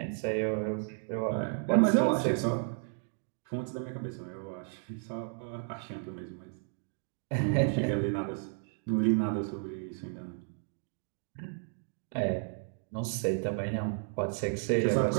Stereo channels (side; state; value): left; silent; 56 dB below the other